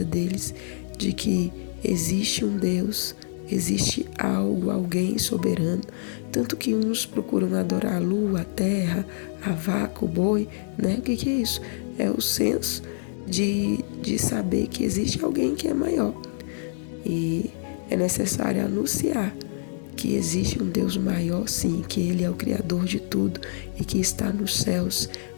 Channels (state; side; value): silent; right; digital silence